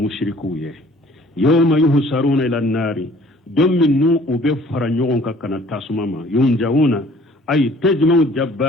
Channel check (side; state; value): both; normal; correlation 0.54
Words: ye yawma yuhsaruna ila nari domin nu ube faranyogon kakana tasumama yunjauna ay tajma'u